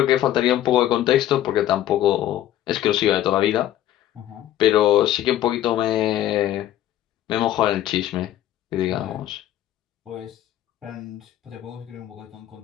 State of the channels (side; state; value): right; quieter; 12.8 dB